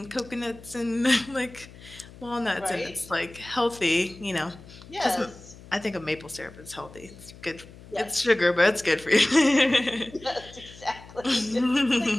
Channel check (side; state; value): left; noise; hum, 19 dB below the sound